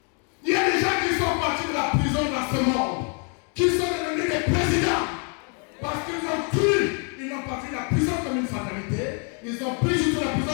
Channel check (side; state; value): right; quieter; 39.3 dB